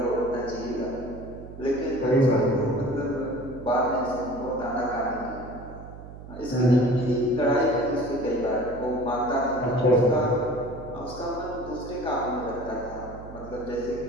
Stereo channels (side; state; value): right; noise; hum, 14 dB below the sound